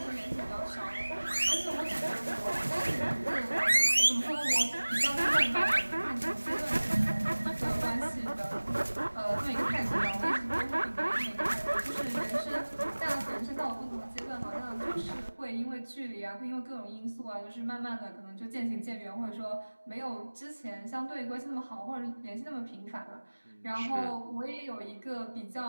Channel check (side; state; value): both; inverted; correlation -1.00